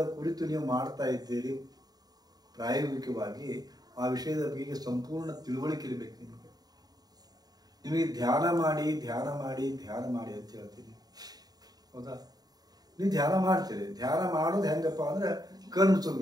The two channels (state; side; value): late; left; 0.19 ms